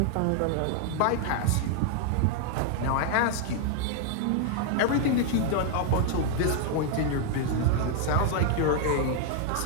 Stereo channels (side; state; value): both; different; correlation 0.00